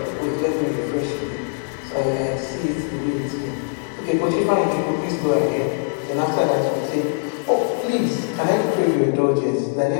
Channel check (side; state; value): right; silent; digital silence